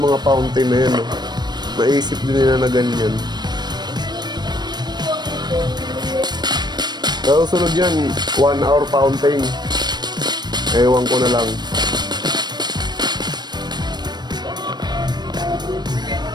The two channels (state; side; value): late; left; 0.21 ms